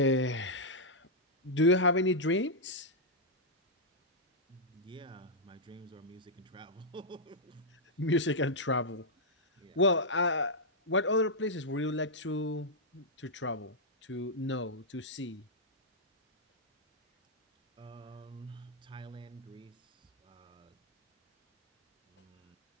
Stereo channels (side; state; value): both; normal; correlation -0.07